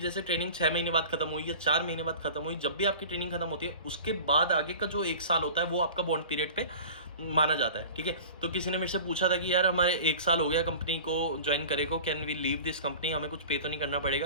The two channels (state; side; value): inverted; both; correlation -0.39